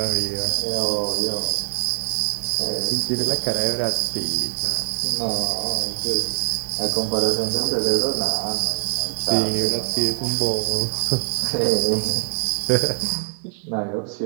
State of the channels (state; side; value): silent; left; digital silence